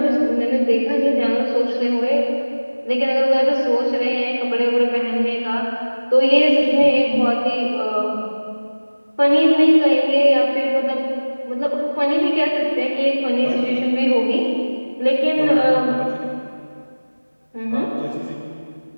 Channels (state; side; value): inverted; both; correlation -1.00